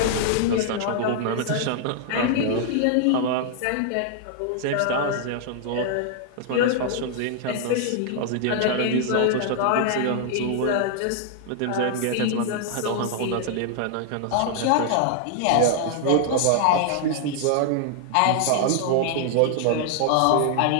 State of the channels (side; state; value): both; different; correlation -0.01